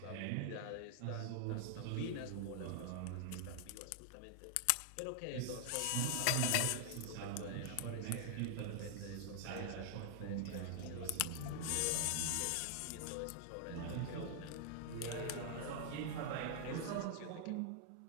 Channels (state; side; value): different; both; correlation 0.00